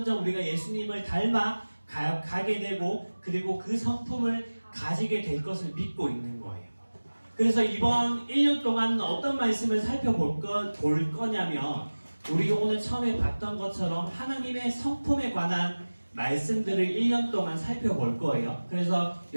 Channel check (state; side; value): inverted; both; correlation -1.00